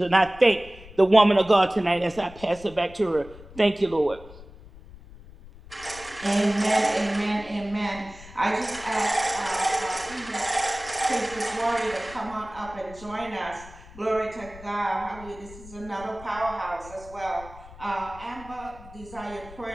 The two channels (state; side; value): noise; left; rumble, 18 dB below the sound